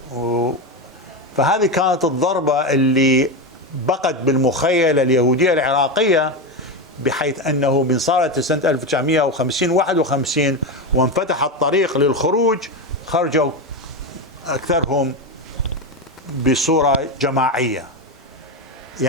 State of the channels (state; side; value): normal; both; correlation 0.14